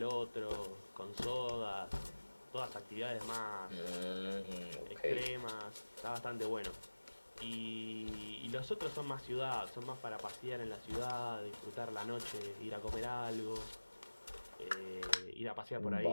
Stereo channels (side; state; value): both; inverted; correlation -1.00